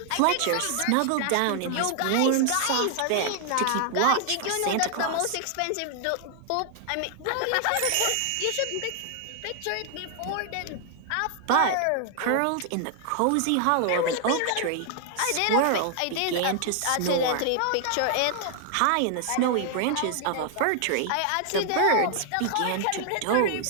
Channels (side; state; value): both; different; correlation 0.00